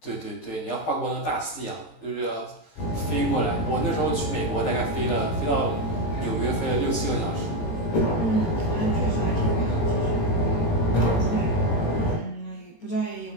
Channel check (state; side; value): late; right; 18 ms